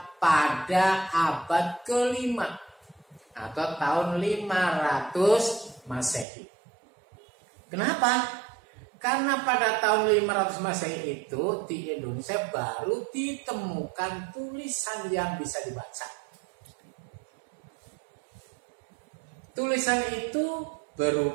pada abad ke-5 atau tahun 500 Masehi. Kenapa? Karena pada tahun 500 Masehi itu di Indonesia baru ditemukan tulisan yang bisa dibaca. Tulisan itu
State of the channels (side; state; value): left; drops out; at 6.2 s